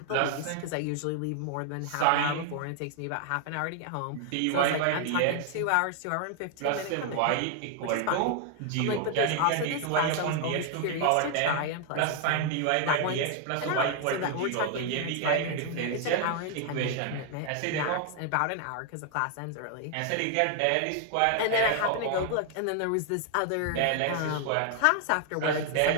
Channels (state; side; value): different; both; correlation 0.00